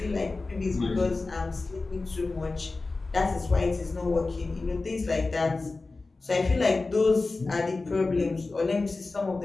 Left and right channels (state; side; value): quieter; right; 3.6 dB